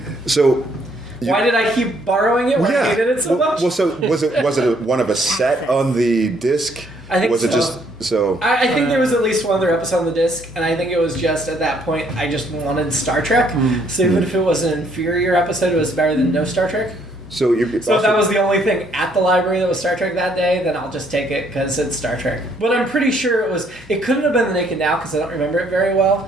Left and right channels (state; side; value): normal; both; correlation 0.67